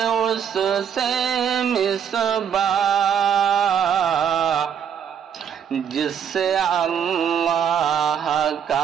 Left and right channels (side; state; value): left; quieter; 8.1 dB